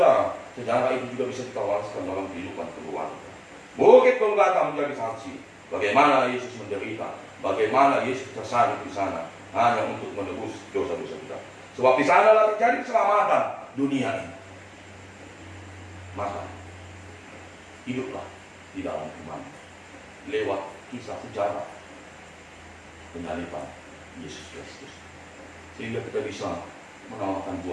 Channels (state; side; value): identical; both; correlation 1.00